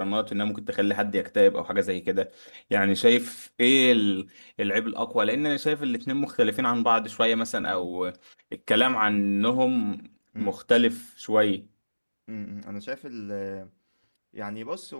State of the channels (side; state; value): both; inverted; correlation -1.00